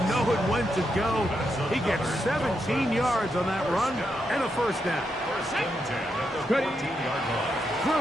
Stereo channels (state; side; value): normal; both; correlation 0.83